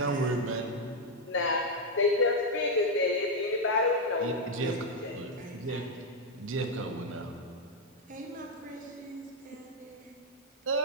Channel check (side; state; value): both; normal; correlation 0.03